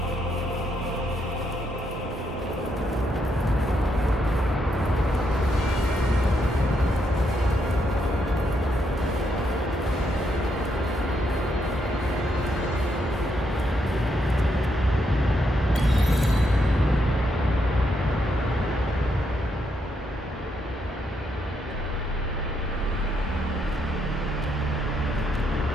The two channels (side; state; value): both; normal; correlation 0.78